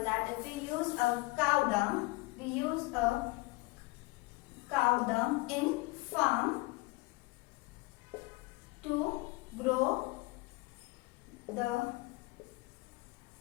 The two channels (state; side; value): quieter; right; 23.4 dB